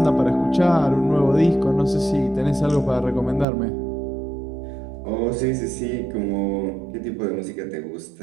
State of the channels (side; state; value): left; drops out; at 3.5 s